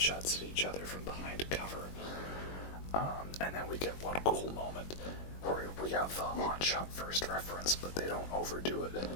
at each other from behind cover. And then we get one cool moment where we have the Han shot first reference, but they don't overdo it.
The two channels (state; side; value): late; right; 21 ms